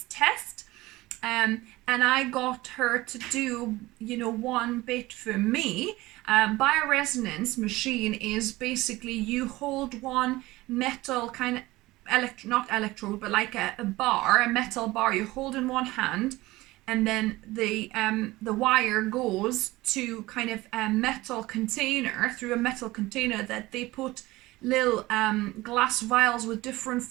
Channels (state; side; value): quieter; left; 19.2 dB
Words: test. And I got her to do, one bit for me. Bioresonance machine is basically you hold one metal kind of not electrode, but like a metal bar. You hold in one hand, and then the wire goes to kind of a metal container, through a metal container that they put little glass vials with different